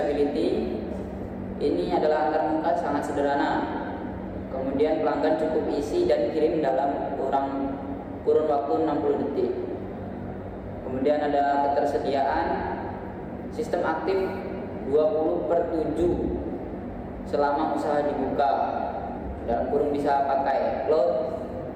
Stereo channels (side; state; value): both; identical; correlation 1.00